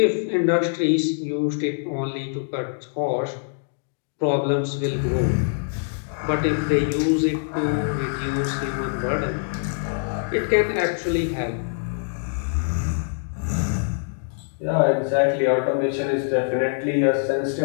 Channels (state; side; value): silent; right; digital silence